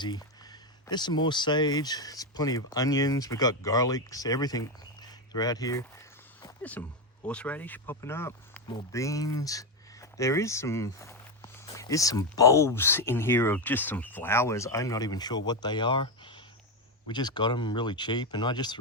There's some more sage. There's plenty of onions. We've got garlics, everything throughout here. There's some horseradish popping up, more beans. There is some bulbs in here of just some flowers. I'm not even sure what they are. We just got them really cheap, and I just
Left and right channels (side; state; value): both; normal; correlation 0.09